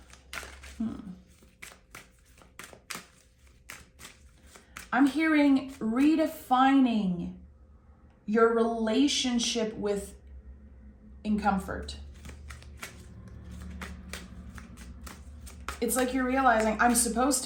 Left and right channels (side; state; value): both; identical; correlation 1.00